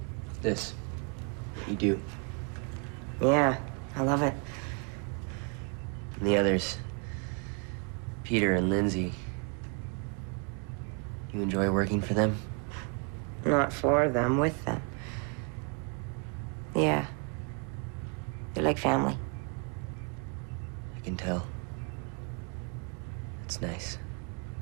This. You do. Yeah, I love it. And the others, Peter and Lindsay, you enjoy working for them? Not for them, with them. Yeah. They're like family. I can tell. It's nice.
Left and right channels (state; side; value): quieter; left; 36.6 dB